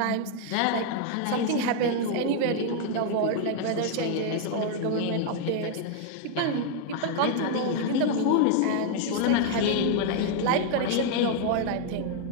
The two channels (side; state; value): both; different; correlation 0.00